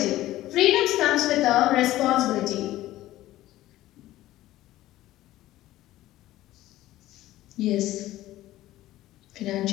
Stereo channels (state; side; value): quieter; right; 15.4 dB